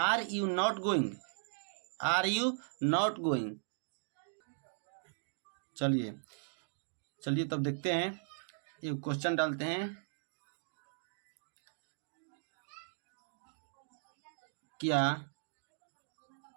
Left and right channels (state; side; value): silent; left; digital silence